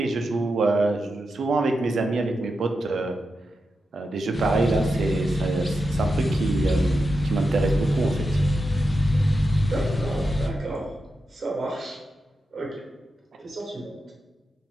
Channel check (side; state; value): both; normal; correlation 0.88